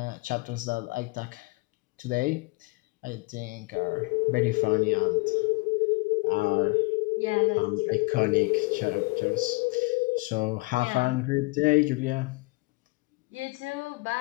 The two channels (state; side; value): quieter; right; 25.9 dB